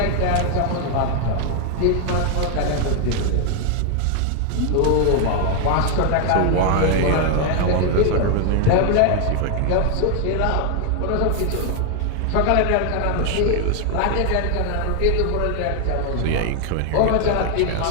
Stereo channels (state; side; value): different; both; correlation 0.00